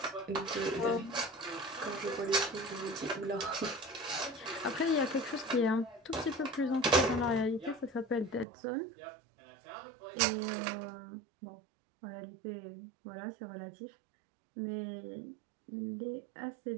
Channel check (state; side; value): drops out; left; at 8.5 s